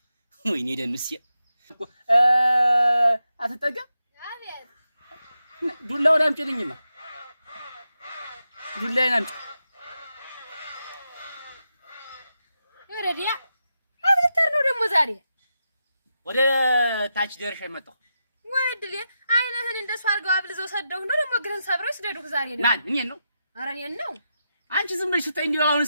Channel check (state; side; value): inverted; both; correlation -0.87